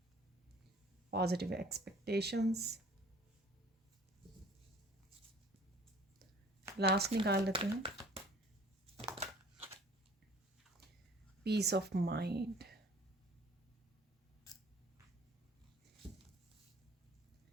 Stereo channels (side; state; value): both; normal; correlation 0.51